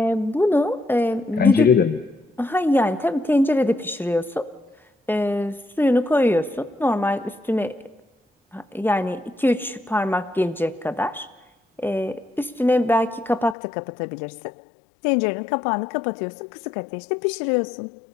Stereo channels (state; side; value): drops out; right; at 13.6 s